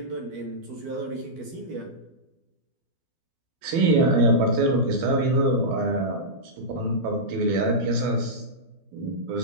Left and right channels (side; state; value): left; late; 12 ms